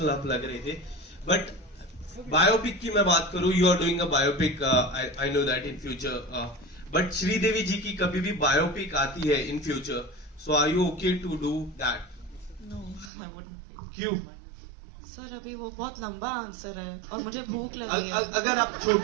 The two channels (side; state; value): left; drops out; at 13.1 s